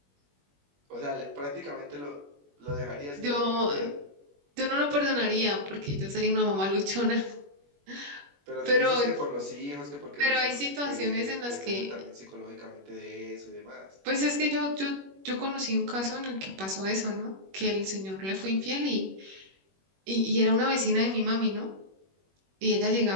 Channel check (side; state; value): left; late; 21 ms